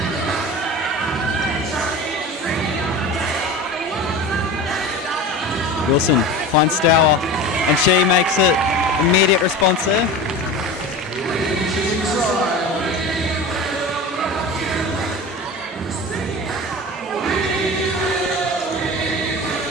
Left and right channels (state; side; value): normal; both; correlation 0.32